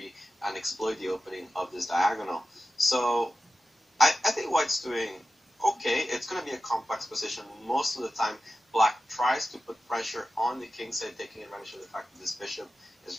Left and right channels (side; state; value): both; normal; correlation 0.93